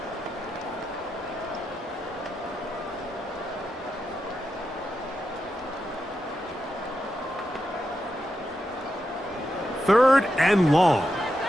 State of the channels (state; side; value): normal; both; correlation 0.87